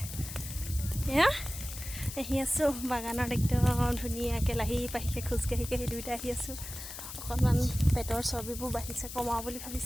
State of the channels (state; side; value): noise; left; hiss, 10 dB below the sound